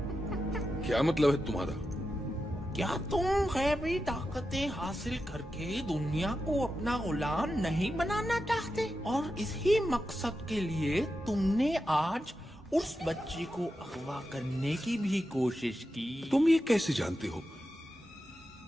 क्या मतलब है तुम्हारा? क्या तुम गैबी ताकतें हासिल करके दुनिया को अपना गुलाम नहीं बनाना चाहते? और इसी मकसद के लिए तुमने आज उस बच्ची को अगवा करने की भी कोशिश की। तुम ये कैसे जानते हो?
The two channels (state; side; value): normal; both; correlation 0.89